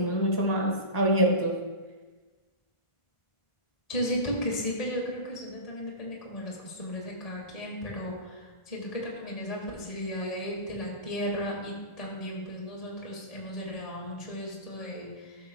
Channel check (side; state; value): right; late; 1.5 ms